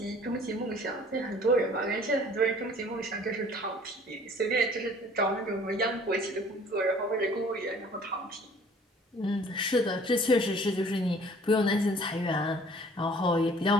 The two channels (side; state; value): both; normal; correlation 0.52